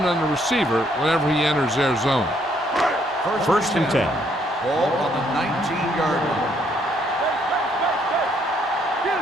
on the receiver whenever he enters their zone. First and 10. Ball on the 19-yard line.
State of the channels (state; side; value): normal; both; correlation 0.69